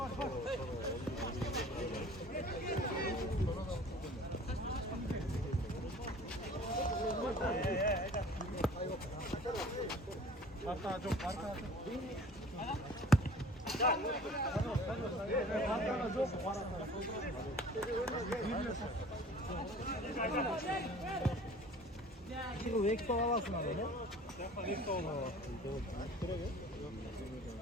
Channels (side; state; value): both; normal; correlation 0.47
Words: 지금 왜 이렇게 와봤어 나는? 약간 이렇게 와봤어. 그러게.